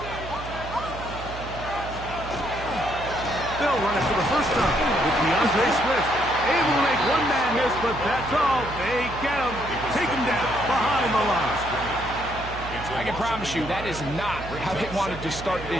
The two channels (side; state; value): right; noise; hum, 11 dB below the sound